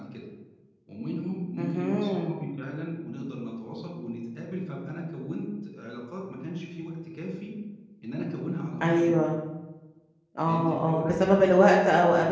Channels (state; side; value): identical; both; correlation 1.00